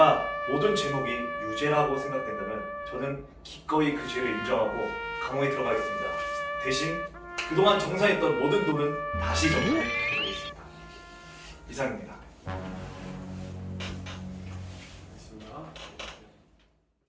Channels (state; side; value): identical; both; correlation 1.00